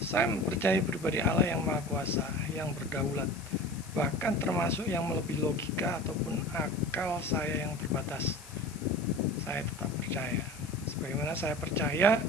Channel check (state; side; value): noise; left; hiss, 18 dB below the sound